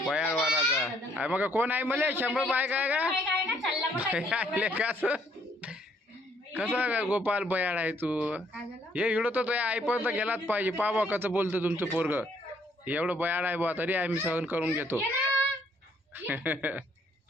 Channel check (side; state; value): both; normal; correlation 0.66